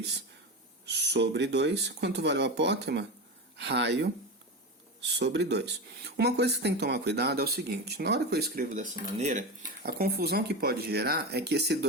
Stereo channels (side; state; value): both; normal; correlation 0.21